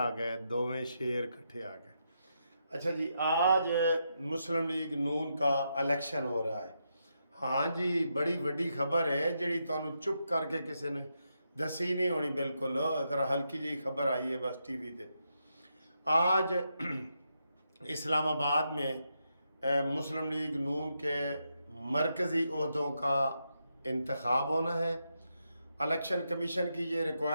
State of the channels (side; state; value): both; inverted; correlation -0.83